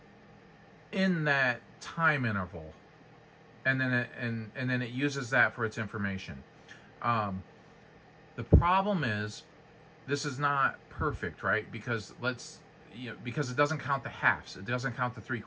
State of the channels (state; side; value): identical; both; correlation 1.00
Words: in that time interval, and then it uses that for its information. The problem is this is not perfect, right? Because because it doesn't count the halves, it doesn't count the